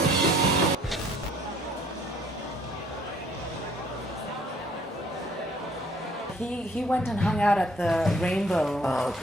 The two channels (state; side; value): normal; both; correlation 0.60